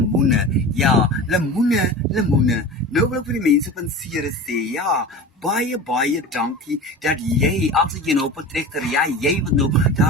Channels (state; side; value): normal; both; correlation 0.33